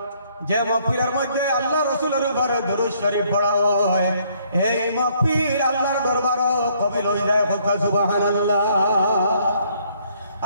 যে মাহফিলের মধ্যে আল্লাহ রাসূলের উপরে দরুদ শরীফ পড়া হয়, এই মাহফিল আল্লাহর দরবারও কবুল হয়ে যায়। সুবহানাল্লাহ।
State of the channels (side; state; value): both; inverted; correlation -0.66